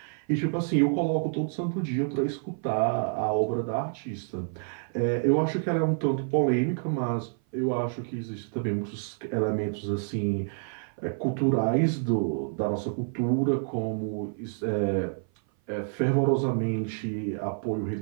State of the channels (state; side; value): silent; left; 55 dB below the other